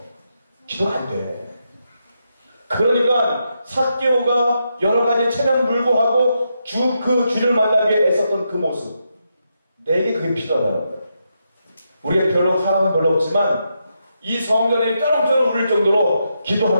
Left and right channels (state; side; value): inverted; both; correlation -0.83